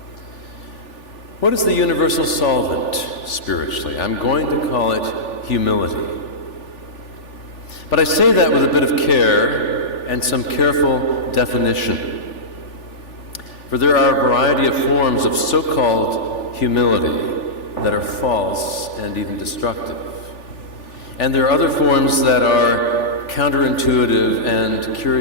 What is the universal solvent spiritually? I'm going to call it humility. But I say that with a bit of care and some careful definition. For there are a variety of forms of so-called humility that are false and even destructive. And there are other forms that are counterintuitive and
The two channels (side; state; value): right; late; 3.4 ms